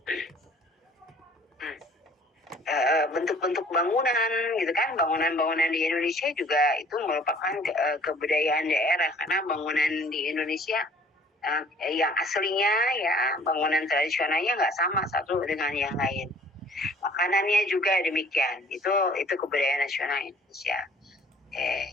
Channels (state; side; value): normal; both; correlation 0.54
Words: Bentuk-bentuk bangunan gitu kan, bangunan-bangunan di Indonesia juga itu merupakan kebudayaan daerah, karena bangunan di Indonesia yang aslinya ya bangunan tradisionalnya nggak sama satu dengan yang lain. Makanannya juga demikian, itu kebudayaan nasional Indonesia.